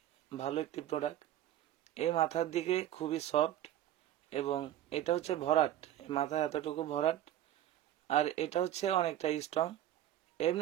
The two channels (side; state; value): left; quieter; 12.4 dB